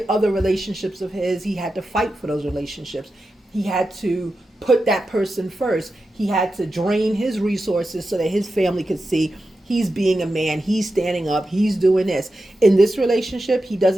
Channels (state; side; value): normal; both; correlation 0.91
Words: other relationships of his. He had to fight for those relationships. He had to put that person first. He had to drain his resources so that his family could see he's being a man. He's standing up. He's doing this. In this relationship, he